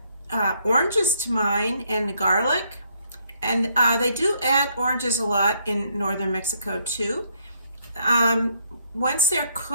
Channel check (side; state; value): both; inverted; correlation -0.71